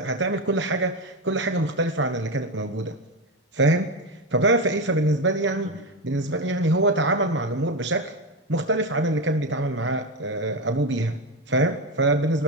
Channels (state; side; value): normal; both; correlation 0.14